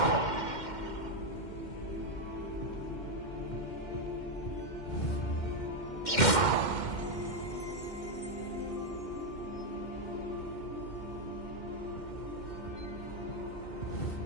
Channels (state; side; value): late; right; 2.1 ms